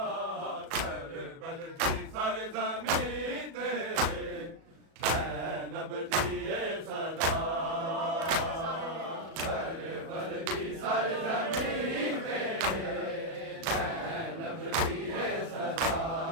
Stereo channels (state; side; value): late; left; 36 ms